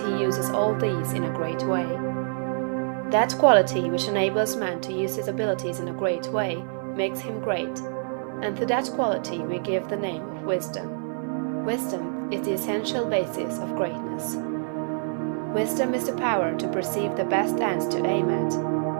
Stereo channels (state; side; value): silent; left; 57 dB below the other